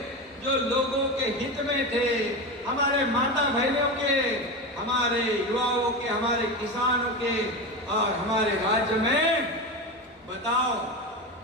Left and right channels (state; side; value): normal; both; correlation 0.21